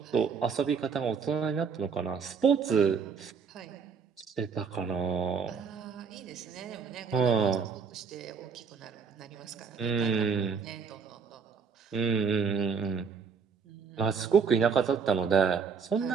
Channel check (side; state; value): left; quieter; 5.9 dB